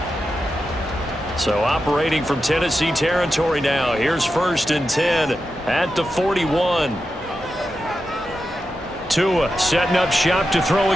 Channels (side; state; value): both; normal; correlation 0.89